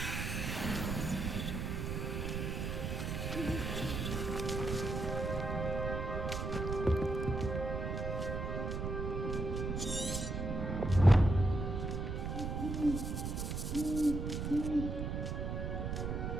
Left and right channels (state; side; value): noise; right; rumble, 2 dB below the sound